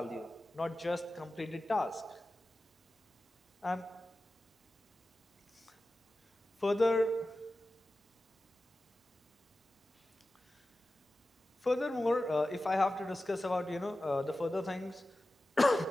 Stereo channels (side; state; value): both; normal; correlation 0.94